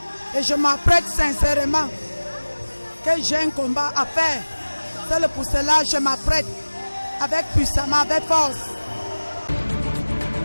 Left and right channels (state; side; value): inverted; both; correlation -1.00